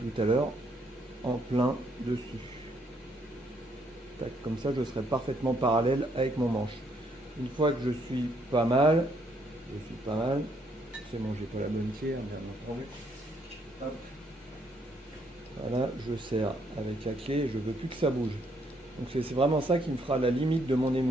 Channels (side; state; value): both; normal; correlation 0.71